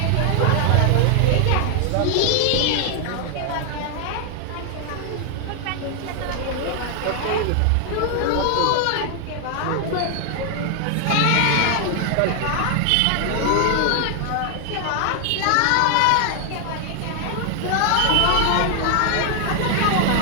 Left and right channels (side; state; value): both; different; correlation 0.00